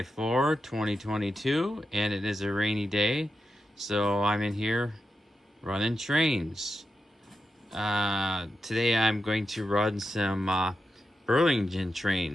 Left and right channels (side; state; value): both; normal; correlation 0.88